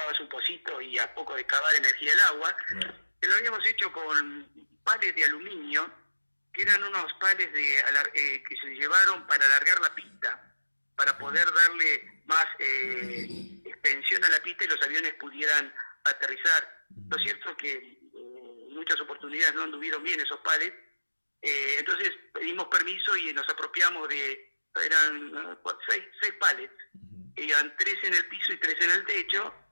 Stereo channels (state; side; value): inverted; both; correlation -1.00